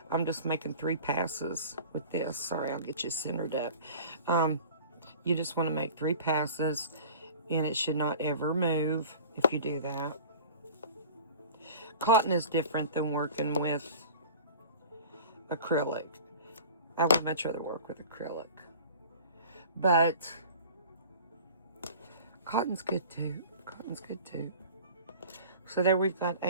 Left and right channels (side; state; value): both; inverted; correlation -0.41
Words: I'm just making 3 passes with this. Sorry, I'll get you centered up. You just want to make 3 passes, and it should not ever move if you do that. Cotton is different than working with acrylic. I would much rather work with acrylic. But cotton's good too. Cotton's good too. So there we've got